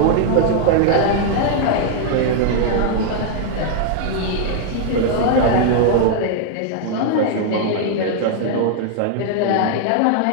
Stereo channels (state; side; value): different; both; correlation 0.00